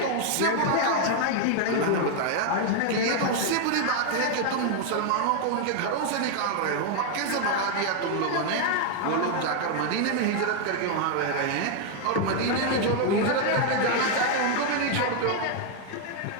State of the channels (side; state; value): both; different; correlation 0.00